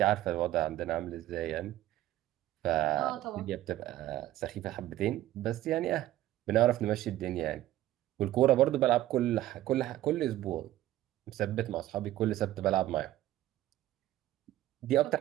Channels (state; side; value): quieter; left; 14.4 dB